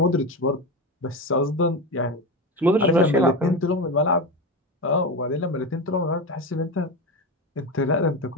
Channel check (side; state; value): both; normal; correlation 0.19